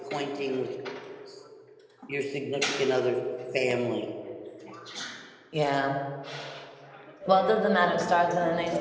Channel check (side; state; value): both; identical; correlation 1.00